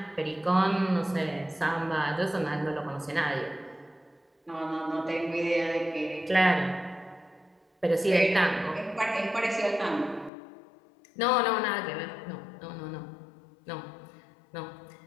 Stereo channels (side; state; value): right; drops out; at 10.3 s